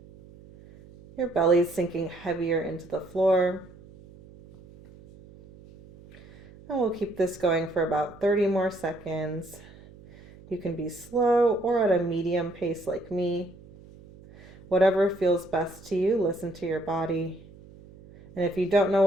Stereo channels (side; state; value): right; noise; hum, 22 dB below the sound